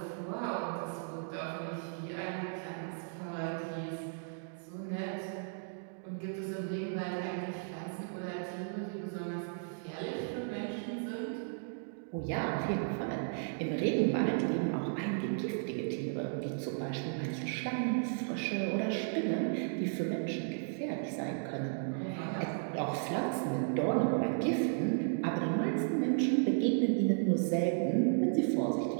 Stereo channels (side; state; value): left; silent; digital silence